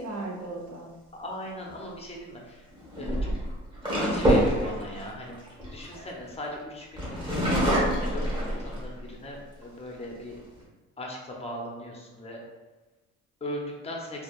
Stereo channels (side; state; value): both; normal; correlation 0.48